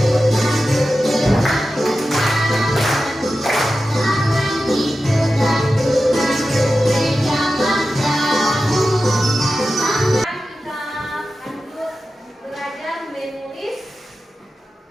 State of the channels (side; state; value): both; normal; correlation 0.93